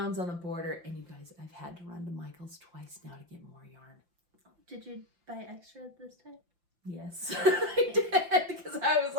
on the border. And you guys, I've had to run to Michael's twice now to get more yarn. Did you buy extra this time? Yes, I did, because I was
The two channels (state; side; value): late; left; 5.8 ms